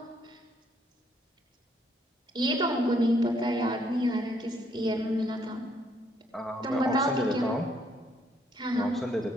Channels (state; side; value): normal; both; correlation 0.69